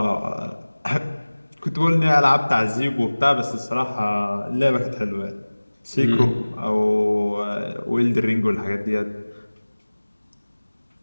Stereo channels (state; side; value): inverted; both; correlation -1.00